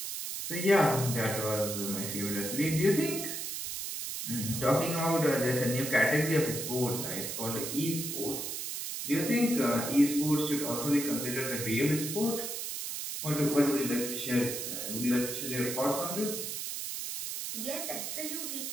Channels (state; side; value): noise; right; hiss, 5 dB below the sound